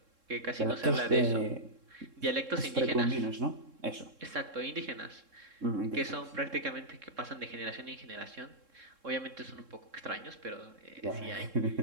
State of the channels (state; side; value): late; left; 3.7 ms